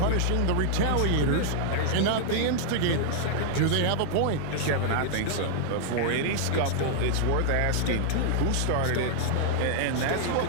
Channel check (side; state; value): both; different; correlation -0.01